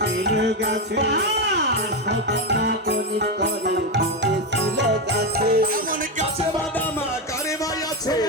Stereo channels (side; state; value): both; normal; correlation 0.11